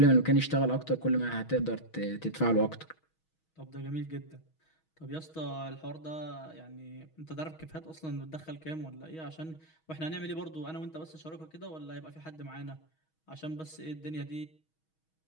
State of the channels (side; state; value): right; late; 6.3 ms